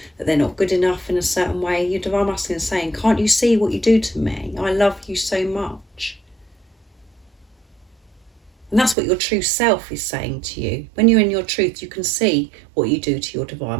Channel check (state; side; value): drops out; left; at 9.0 s